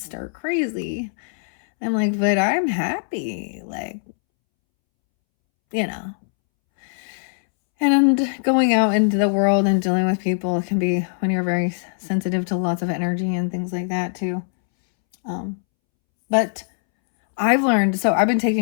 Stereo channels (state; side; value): silent; right; 65 dB below the other